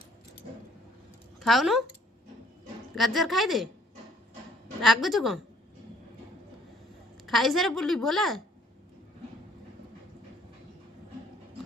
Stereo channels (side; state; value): both; normal; correlation 0.61